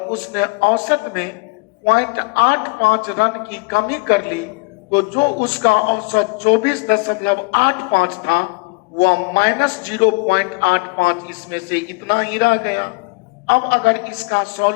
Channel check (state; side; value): quieter; right; 29.6 dB